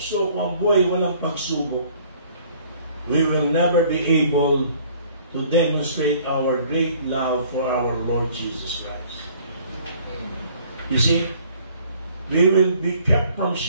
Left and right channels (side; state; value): both; inverted; correlation -0.56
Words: kung ang buhay walang pagsubok, we will never be able to demonstrate our great love for our Lord Jesus Christ. You see, we will be kept from